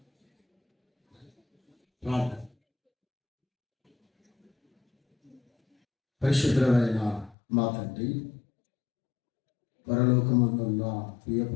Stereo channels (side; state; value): right; drops out; at 7.4 s